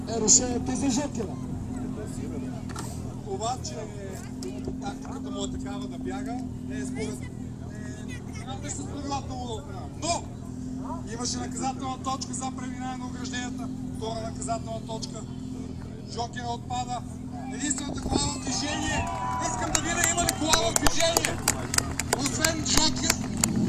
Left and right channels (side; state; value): both; identical; correlation 1.00